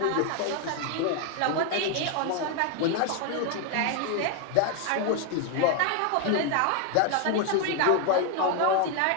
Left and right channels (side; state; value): both; different; correlation 0.01